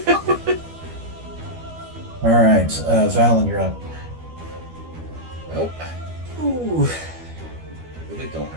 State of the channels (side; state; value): left; late; 12 ms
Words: All right, Valen, you're up. Well, really don't